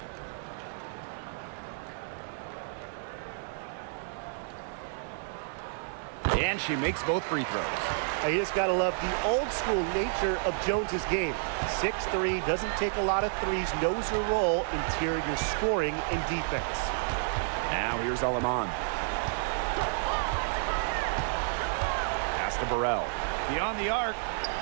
And she makes both free throws. You just got to love the old-school nature of Jones's game. 6'3", doesn't take a lot of threes, knows her role, interior scoring and defense. Now here's Alaman. Pass to Burrell. Beyond the arc.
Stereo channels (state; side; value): silent; left; digital silence